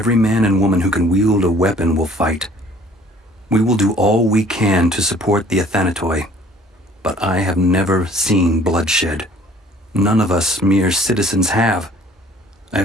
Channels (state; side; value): normal; both; correlation 0.55